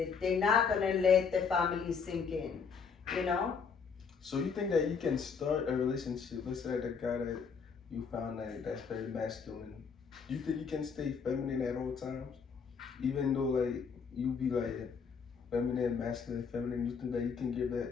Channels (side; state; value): right; quieter; 5.9 dB